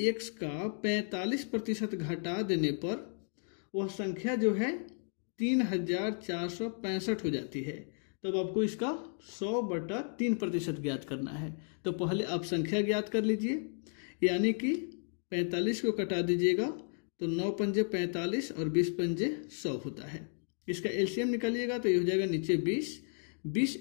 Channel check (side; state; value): right; silent; 55 dB below the other